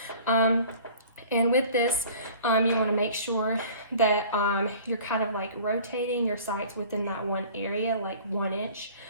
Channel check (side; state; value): both; inverted; correlation -0.46